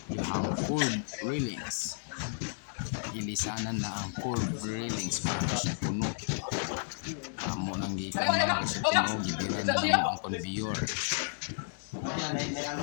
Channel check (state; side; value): silent; right; 56 dB below the other